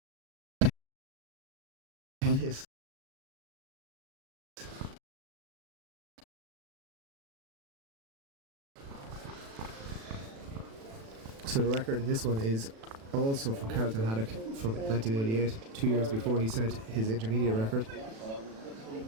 It is. So the record in this one is also from Carlton Haddock from 1988, 2 years before he set his intermediate record.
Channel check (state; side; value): late; left; 36 ms